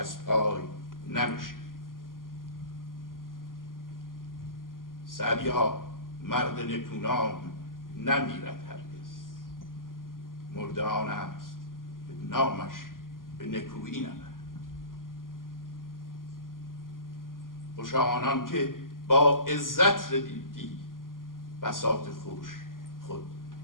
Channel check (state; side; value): late; right; 0.91 ms